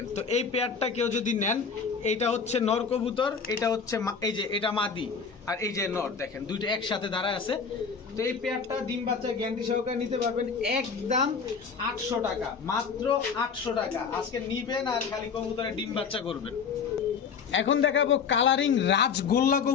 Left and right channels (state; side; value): quieter; right; 5.8 dB